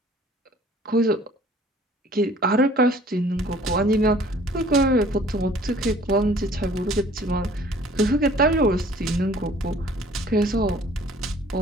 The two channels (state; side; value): normal; both; correlation 0.53